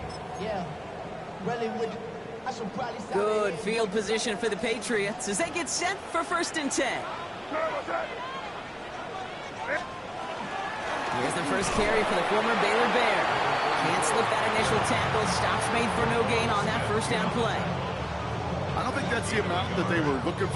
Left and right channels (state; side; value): identical; both; correlation 1.00